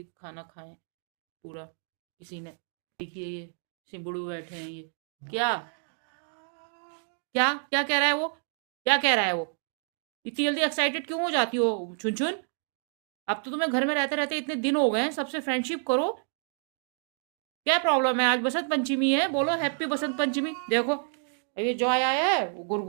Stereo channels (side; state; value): left; silent; 59 dB below the other